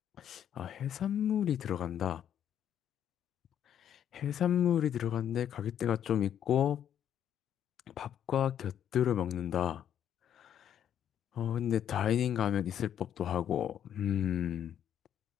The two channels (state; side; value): quieter; right; 9.7 dB